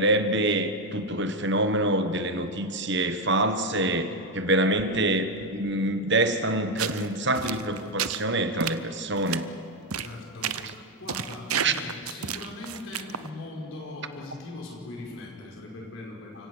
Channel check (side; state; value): both; normal; correlation 0.07